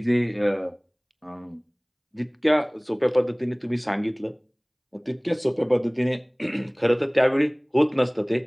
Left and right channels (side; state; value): both; identical; correlation 1.00